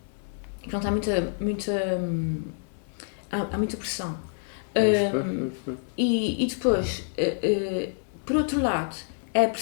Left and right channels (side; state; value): right; silent; digital silence